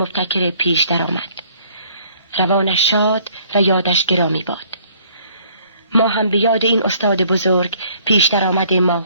پیش درآمد. روانش شاد و یادش گرامی باد. ما هم به یاد این استاد بزرگ پیش درآمد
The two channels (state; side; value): inverted; both; correlation -0.60